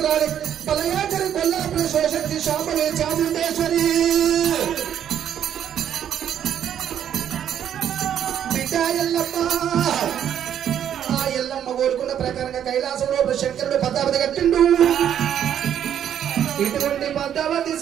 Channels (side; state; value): left; quieter; 9.6 dB